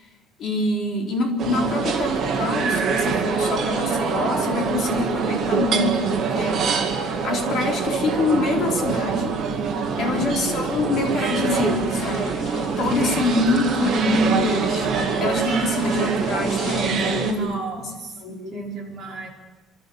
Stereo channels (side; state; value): both; normal; correlation 0.51